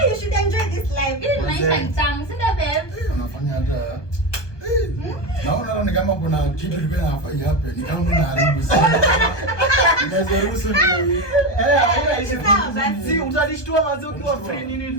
You should enjoy this life. Hii maisha ni tamu, si ndio babe? Unafanya hata naona ni kama kuna kitu kilikuwa nafai hapa. Ni kama unaharibu sana. Naweza ruhusu ni si utanishtua wazi ukiwa free nini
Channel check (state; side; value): late; right; 1.2 ms